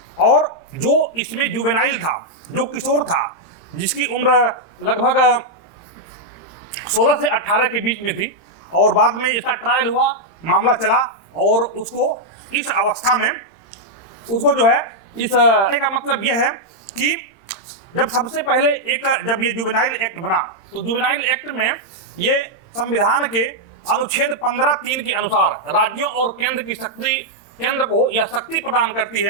और जो इसमें जुवेनाइल था, जो किशोर था, जिसकी उम्र लगभग 16 से 18 के बीच में थी, और बाद में इसका ट्रायल हुआ, मामला चला और उसको इस अवस्था में उसको जो है इस का मतलब यह है कि जब सबसे पहले जब ये जुवेनाइल एक्ट बना तो जुवेनाइल एक्ट में ये संविधान के अनुच्छेद 15(3) के अनुसार राज्यों और केंद्र को यह शक्ति प्रदान करती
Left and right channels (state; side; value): late; right; 31 ms